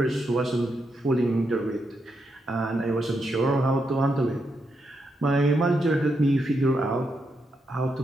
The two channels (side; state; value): both; normal; correlation 0.82